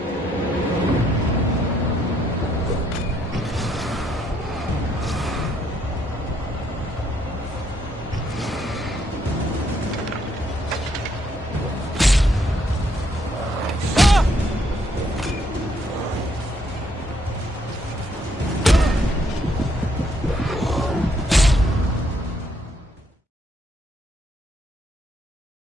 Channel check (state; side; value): normal; both; correlation 0.72